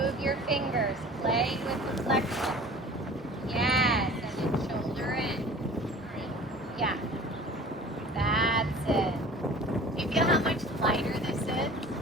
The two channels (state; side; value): normal; both; correlation 0.44